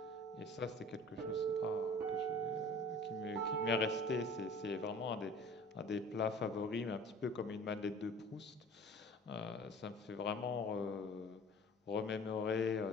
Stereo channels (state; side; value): normal; both; correlation 0.44